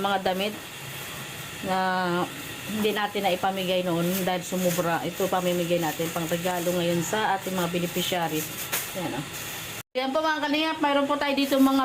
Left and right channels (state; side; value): identical; both; correlation 1.00